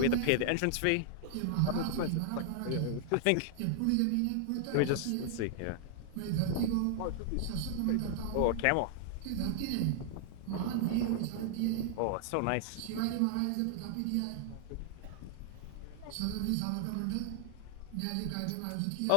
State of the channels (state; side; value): different; both; correlation 0.00